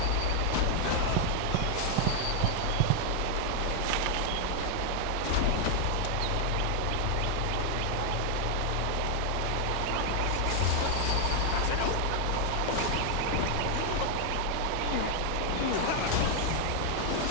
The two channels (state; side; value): different; both; correlation 0.00